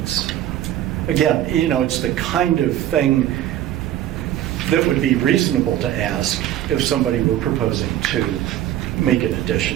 again, you know, it's the kind of thing that would be reasonable to ask if somebody were proposing to make an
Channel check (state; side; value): quieter; left; 12.6 dB